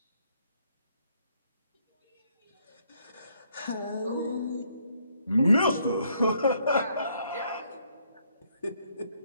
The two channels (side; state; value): both; inverted; correlation -0.70